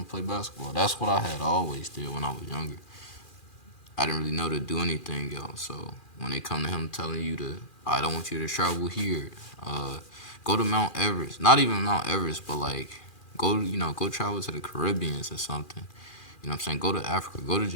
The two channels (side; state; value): right; late; 2.4 ms